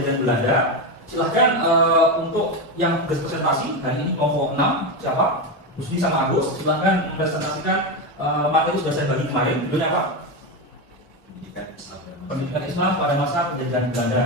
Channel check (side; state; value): both; normal; correlation 0.14